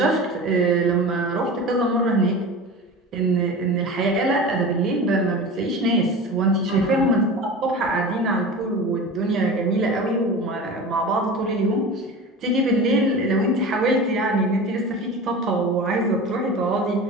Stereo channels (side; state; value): both; normal; correlation 0.32